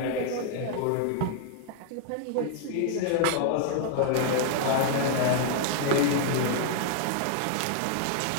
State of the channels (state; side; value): different; both; correlation 0.00